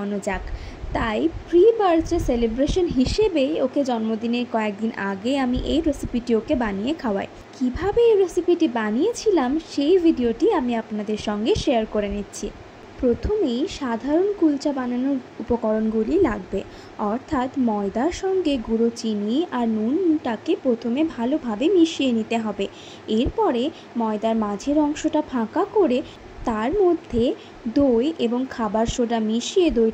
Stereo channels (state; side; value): identical; both; correlation 1.00